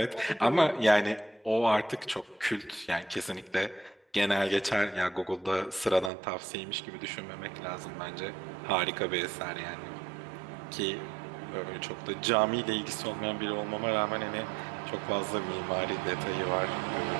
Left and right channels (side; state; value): left; drops out; at 6.1 s